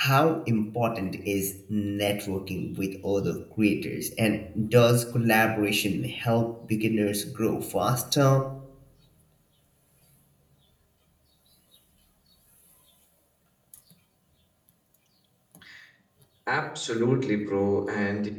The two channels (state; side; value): identical; both; correlation 1.00